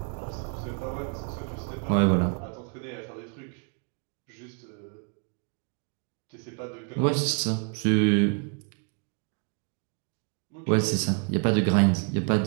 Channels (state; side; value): quieter; left; 38.1 dB